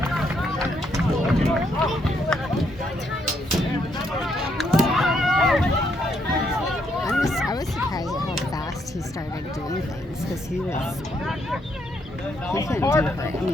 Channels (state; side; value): normal; both; correlation 0.74